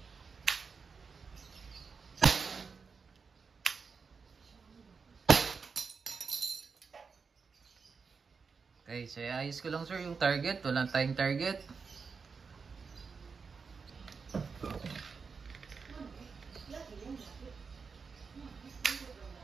Okay, so ayos ko lang, sir, yung target. Walang tayong target.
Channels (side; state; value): left; quieter; 5.2 dB